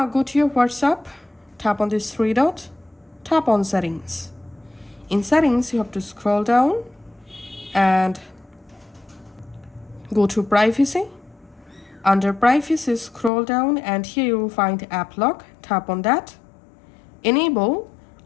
go to your WhatsApp, tap on this three dot, tap on settings. In settings, you have to scroll down and go to privacy. Under privacy, scroll down and here you will find app lock. Tap on that. Enable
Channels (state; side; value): drops out; right; at 13.3 s